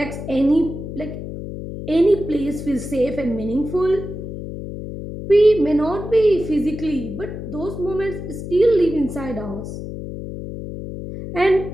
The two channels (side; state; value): left; noise; hum, 8 dB below the sound